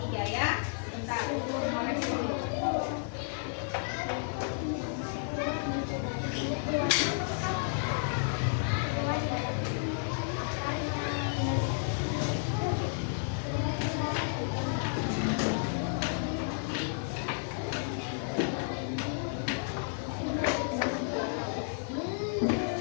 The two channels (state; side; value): silent; right; 56 dB below the other